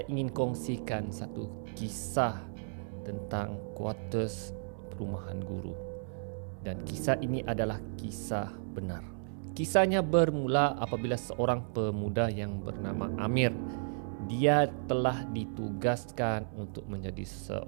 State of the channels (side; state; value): left; silent; digital silence